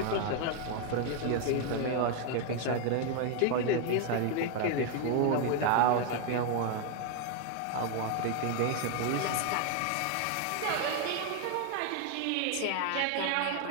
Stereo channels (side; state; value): both; different; correlation 0.01